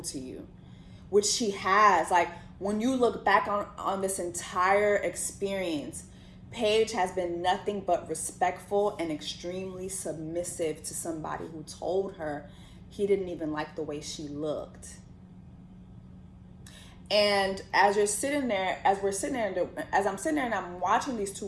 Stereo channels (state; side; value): identical; both; correlation 1.00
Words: to you, which she has. Like, when you look back on this entire experience, Paige has been nothing but respectful and extremely submissive to somebody who told her he didn't even like the way she looked. And as I'm sitting there and I'm watching these two